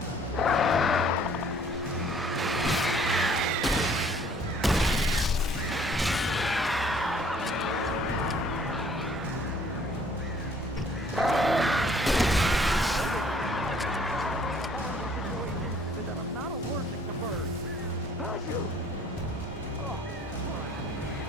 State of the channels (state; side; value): normal; both; correlation 0.58